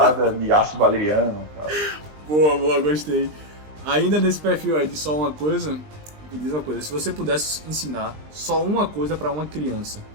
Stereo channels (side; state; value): left; late; 20 ms